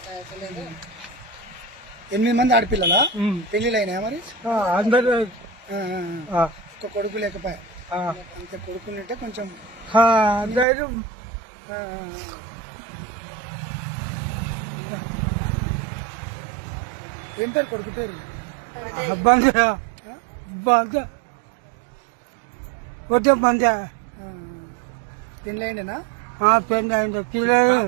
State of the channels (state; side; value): drops out; left; at 10.7 s